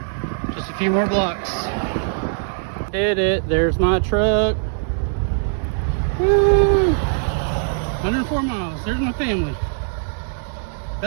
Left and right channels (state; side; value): silent; left; digital silence